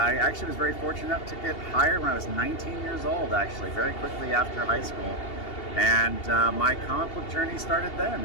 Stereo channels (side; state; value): right; late; 2.8 ms